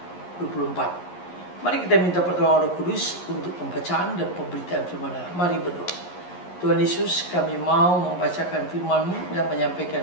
Mari kita minta pertolongan Roh Kudus untuk pembacaan dan pemberitaan firman Allah. Mari berdoa. Tuhan Yesus, kami mau membacakan firman-Mu dan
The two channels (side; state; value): right; late; 11 ms